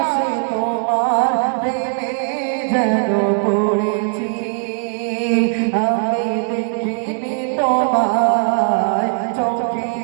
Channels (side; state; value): left; silent; digital silence